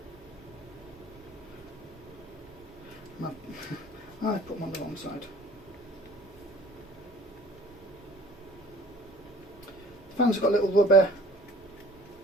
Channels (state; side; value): normal; both; correlation 0.50